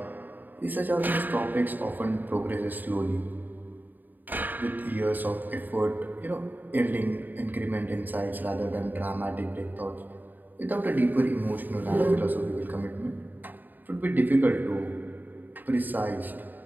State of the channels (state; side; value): late; left; 0.088 ms